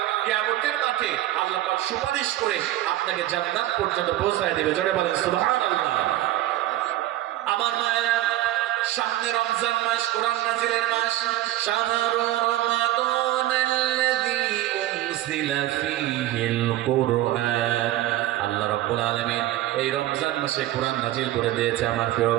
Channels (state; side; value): quieter; left; 14.7 dB